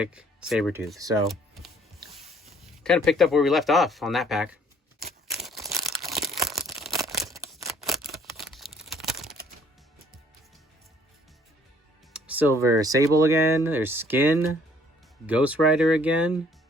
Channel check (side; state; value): both; normal; correlation 0.60